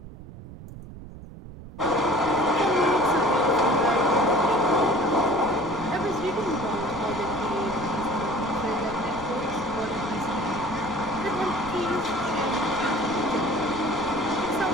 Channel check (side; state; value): right; noise; rumble, 14 dB below the sound